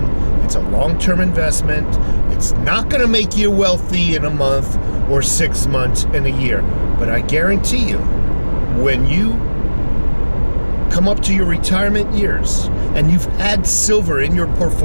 It's a long-term investment. It's not going to make you wealthy in a month or 6 months in a year. But I guarantee you, when you come up to your retirement years and you've had silver in your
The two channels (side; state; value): both; inverted; correlation -1.00